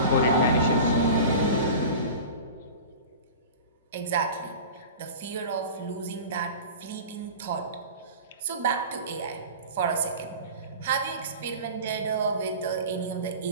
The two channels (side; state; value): both; inverted; correlation -0.35